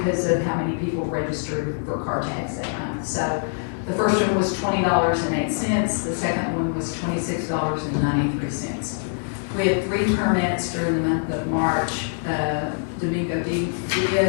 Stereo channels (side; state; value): right; silent; digital silence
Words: of how many people registered for car tags that month. So the first one was $20.08. The second one was $26.93. We had 3 permits during the month of March. Domingo